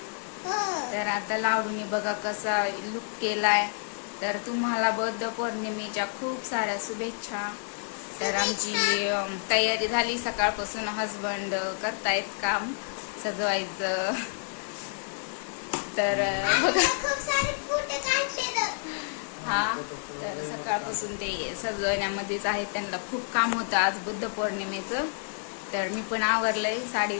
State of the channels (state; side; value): silent; right; digital silence